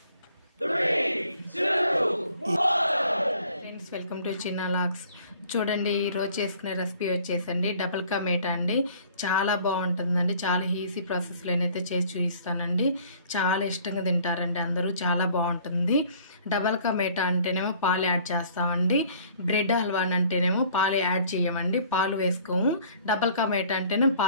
ఫ్రెండ్స్, వెల్కమ్ టు చిన్న లాగ్స్. చూడండి, ఈరోజు చేసుకునే రెసిపీ వచ్చేసండి డబుల్ కా మీట్ అండి. చాలా బాగుంటుందండి. చాలా ఈజీ ప్రాసెస్లోనైతే చేసి చూపిస్తానండి. చాలా ఇష్టంగా తింటారండి అందరూ. చాలా బాగుంటుంది. డబల్ కా మీఠా అంటేనేమో పాలు యాడ్ చేస్తామండి. బ్రెడ్ హల్వా అంటేనేమో పాలు యాడ్ చేయమండి, పాలు వేసుకోము. డబల్ కా మీఠా అంటేనే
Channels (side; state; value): both; inverted; correlation -0.54